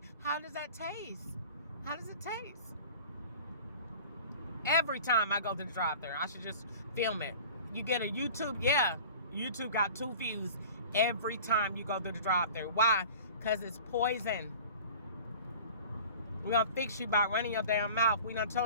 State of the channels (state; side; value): inverted; both; correlation -0.42